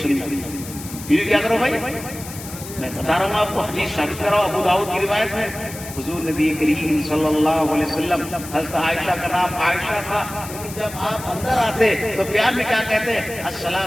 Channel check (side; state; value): left; noise; hiss, 13 dB below the sound